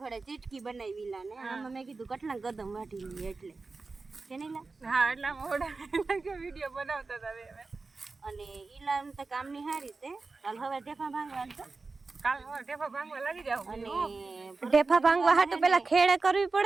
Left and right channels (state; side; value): quieter; left; 3.9 dB